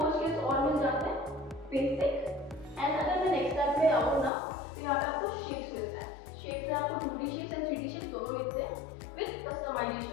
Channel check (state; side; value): drops out; right; at 4.3 s